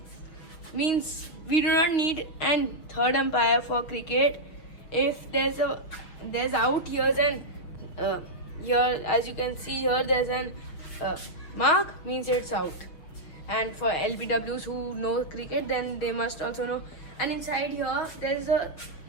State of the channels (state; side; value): late; right; 6.3 ms